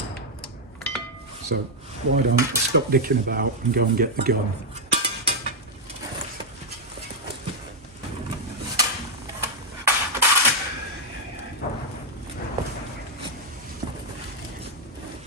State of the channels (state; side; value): normal; both; correlation -0.01